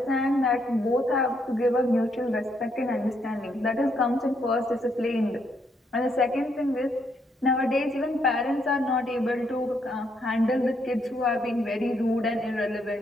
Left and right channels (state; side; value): normal; both; correlation 0.75